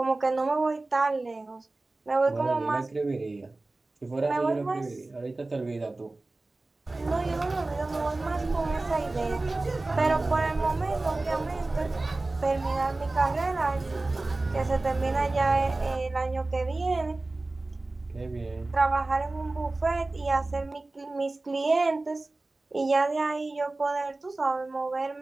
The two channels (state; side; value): quieter; left; 3.1 dB